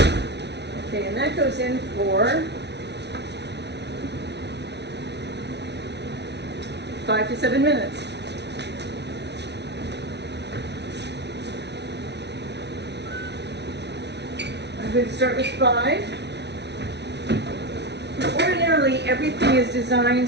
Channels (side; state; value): left; late; 0.50 ms